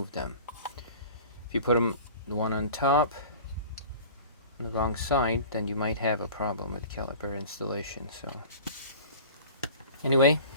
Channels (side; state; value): both; inverted; correlation -0.41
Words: them. If you put them, the one on top, on the wrong side, then you might have a problem with caliper installation. So anyway,